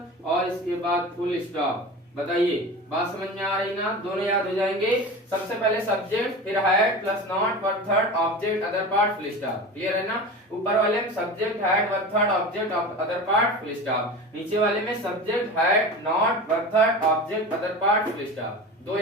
और इसके बाद फुल स्टॉप। बताइए, बात समझ में आ रही ना? दोनों याद हो जाएंगे। सबसे पहले सब्जेक्ट, फिर had plus not verb third, object, other part, full stop. Clear है ना। ऊपर वाले में subject, had, verb third, object, other part, full stop. नीचे वाले में subject, had, not, verb third, object, other part, full stop. दो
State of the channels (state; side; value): normal; both; correlation 0.31